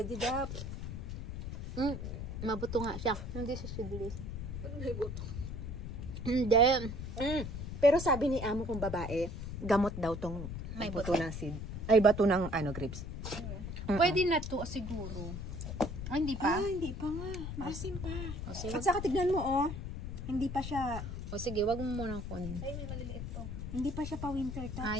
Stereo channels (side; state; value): left; noise; rumble, 6 dB below the sound